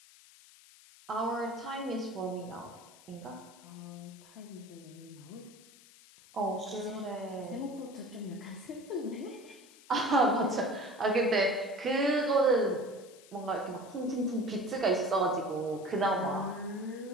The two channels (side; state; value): left; noise; hiss, 23 dB below the sound